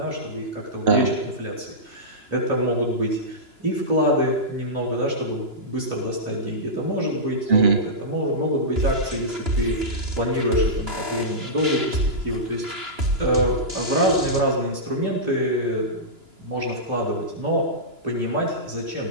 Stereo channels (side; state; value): left; late; 2.9 ms